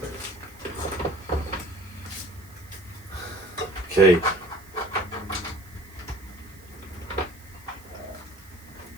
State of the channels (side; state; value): right; noise; hiss, 23 dB below the sound